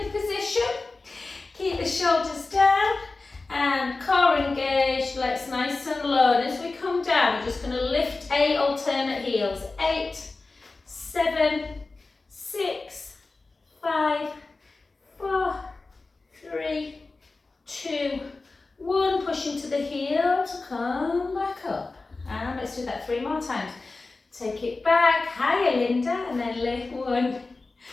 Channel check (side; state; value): right; quieter; 3.6 dB